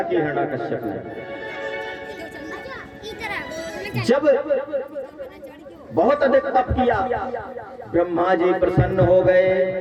की। हिरण्याकश्यप ने जब बहुत अधिक तप किया ब्रह्मा जी प्रसन्न हो गए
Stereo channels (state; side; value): identical; both; correlation 1.00